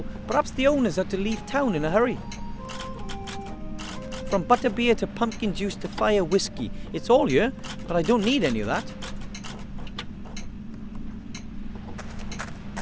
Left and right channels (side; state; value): both; identical; correlation 1.00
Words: Perhaps the owners had to leave town in a hurry. From butterbeer to pumpkin juice to fire whiskey. It's all here, but I don't need any of that.